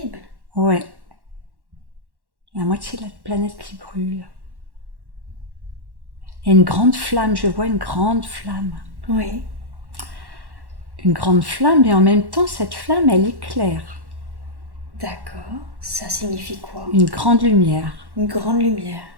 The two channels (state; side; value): late; left; 1.1 ms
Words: Ouais. La moitié de la planète qui brûle. Il y a une grande flamme, je vois une grande flamme. Oui. Une grande flamme, et en même temps, cette flamme, elle éclaire. D'accord. Ça signifie quoi? Une grande lumière. Une grande lumière.